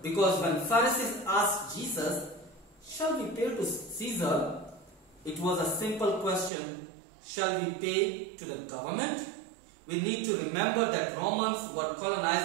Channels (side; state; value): left; drops out; at 6.5 s